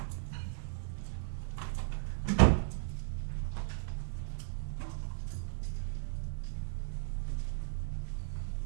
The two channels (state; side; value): silent; left; 54 dB below the other